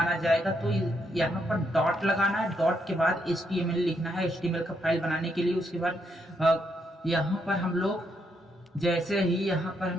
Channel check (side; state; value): both; normal; correlation 0.77